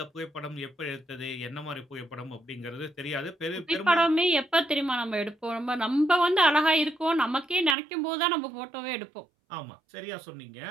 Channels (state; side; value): drops out; left; at 7.8 s